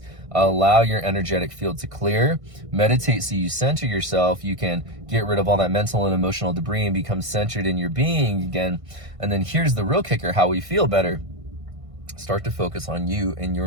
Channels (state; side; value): late; left; 1.6 ms